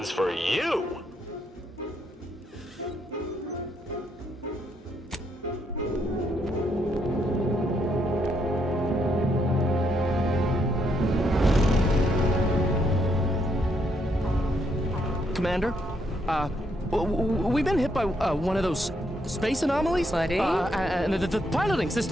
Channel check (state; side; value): normal; both; correlation 0.75